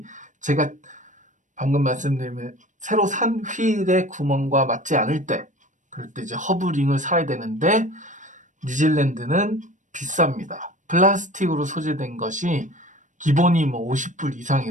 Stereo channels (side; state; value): left; late; 0.37 ms